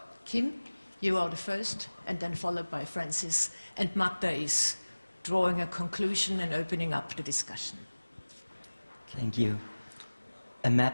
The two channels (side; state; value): both; inverted; correlation -1.00